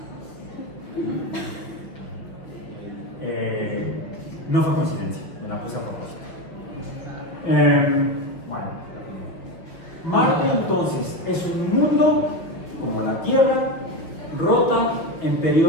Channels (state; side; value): late; right; 5.8 ms